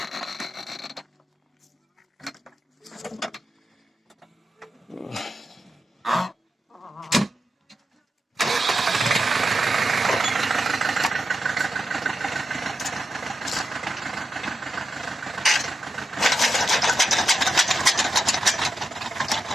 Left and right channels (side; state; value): both; normal; correlation 0.88